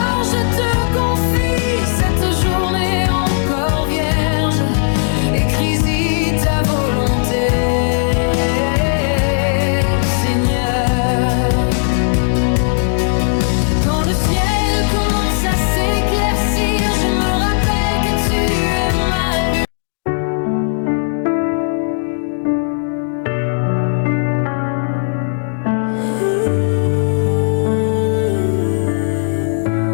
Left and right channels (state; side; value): silent; right; digital silence